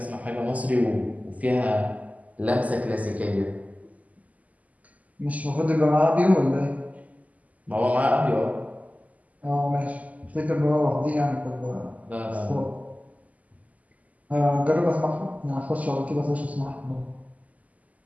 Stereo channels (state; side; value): late; left; 0.074 ms